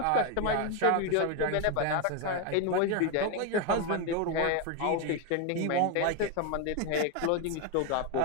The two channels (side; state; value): both; different; correlation 0.02